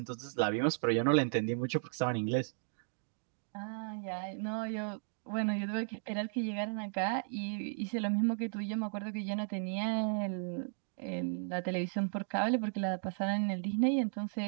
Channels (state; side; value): silent; left; digital silence